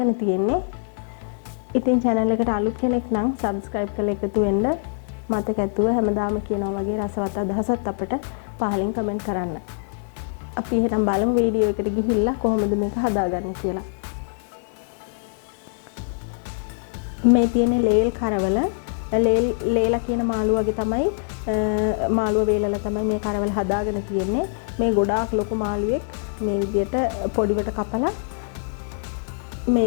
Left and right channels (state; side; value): silent; right; 62 dB below the other